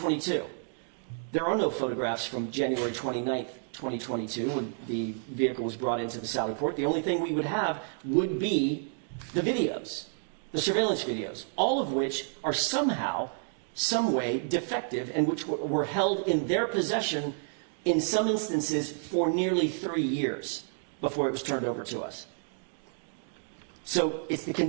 There are no photographs from January 29th, 2022, when the vehicle was brought into the sallyport. The only thing we would have would be the videos, the surveillance videos, all of which are somehow, some way defective, and which were held in their possession in some instances for nearly 3 years before it was turned over to us. So it's the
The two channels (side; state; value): left; silent; digital silence